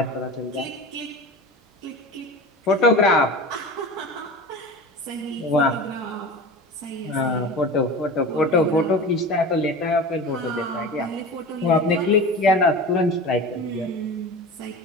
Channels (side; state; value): both; normal; correlation 0.32